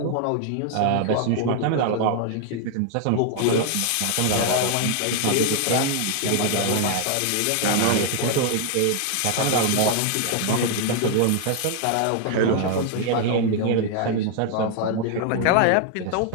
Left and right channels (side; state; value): both; different; correlation 0.00